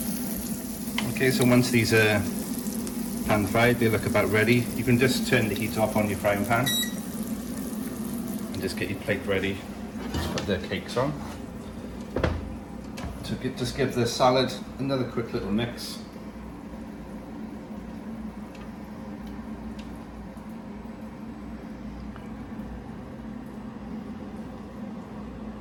Okay, so once these are pan fried, they look about ready. You can just turn the heat off on your frying pan and just get your plate ready. Just put the cakes on. So just give the salad another quick little mix.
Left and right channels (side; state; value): both; identical; correlation 1.00